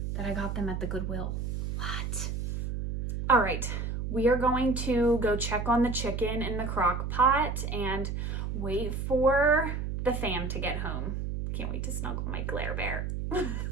that I got them at the Goodwill. What? All right, we are going to go check on the chicken in the crock pot and wait for the fam to get home. Can't wait to snuggle my Glare Bear.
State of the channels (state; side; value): noise; right; hum, 3 dB below the sound